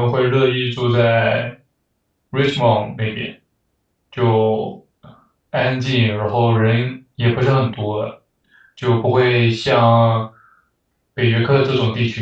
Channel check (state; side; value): identical; both; correlation 1.00